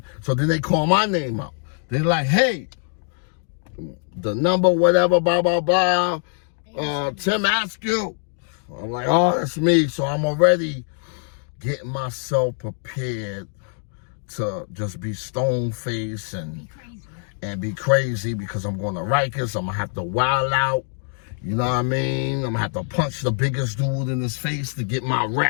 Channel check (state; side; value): silent; right; 58 dB below the other